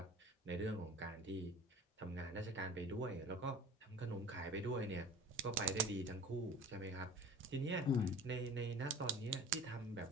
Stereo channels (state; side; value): normal; both; correlation 0.42